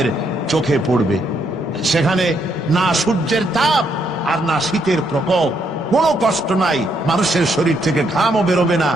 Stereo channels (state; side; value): normal; both; correlation 0.74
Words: চোখে পড়বে। সেখানে না সূর্যের তাপ আর না শীতের প্রকোপ, কোনো কষ্ট নাই, মানুষের শরীর থেকে ঘামও বেরোবে না,